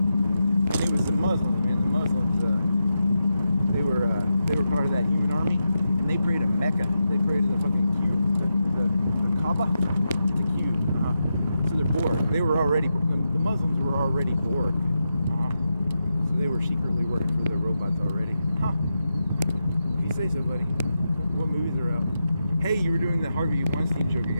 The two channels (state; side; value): inverted; both; correlation -0.87